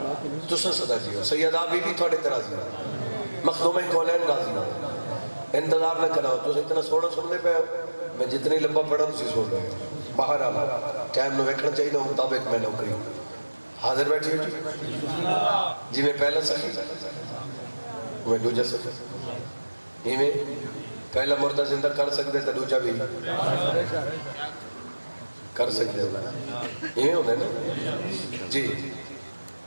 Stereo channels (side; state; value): both; inverted; correlation -1.00